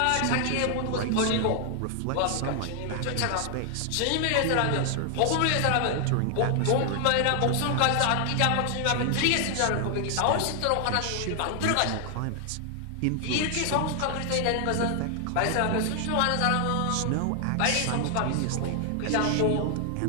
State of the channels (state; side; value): different; both; correlation 0.00